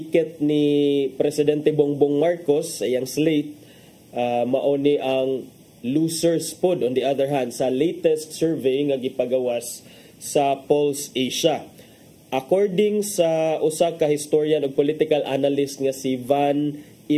ni Presidente Bongbong Marcos ayang slate mao ni ang losers pod on the other hand sa latest survey nga gipagawas sa Pulse Asia. According sa usa ka historian ug political analyst nga si Van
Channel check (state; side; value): identical; both; correlation 1.00